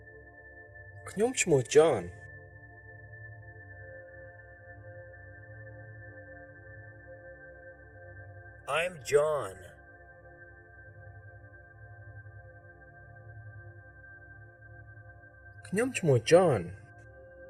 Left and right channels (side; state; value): both; identical; correlation 1.00